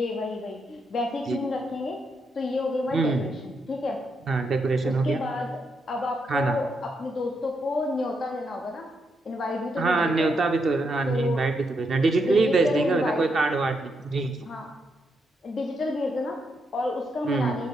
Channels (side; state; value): both; normal; correlation 0.80